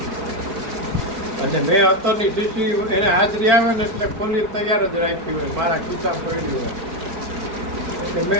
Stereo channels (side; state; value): left; late; 4.5 ms